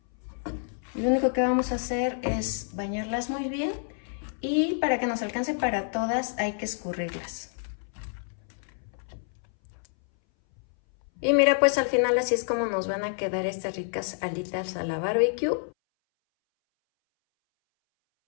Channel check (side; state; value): right; silent; 59 dB below the other